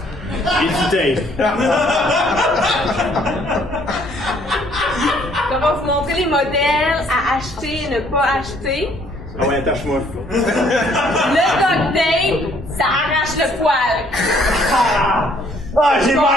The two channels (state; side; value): normal; both; correlation 0.63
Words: et du tape. On va vous montrer les modèles à acheter et ne pas acheter. Ah ouais, attache-moi. Le duct tape, ça arrache le poil. Ah, j'ai